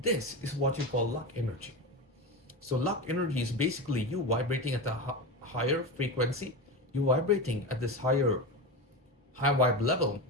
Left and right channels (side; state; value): both; normal; correlation 0.21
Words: this is what you call luck energy. So luck energy is basically you vibrating at the higher frequency, you vibrating at this high vibe level,